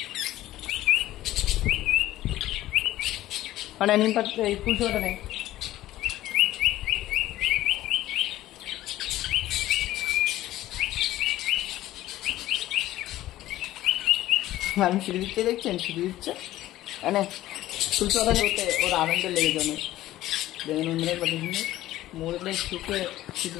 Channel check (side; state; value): right; quieter; 15.0 dB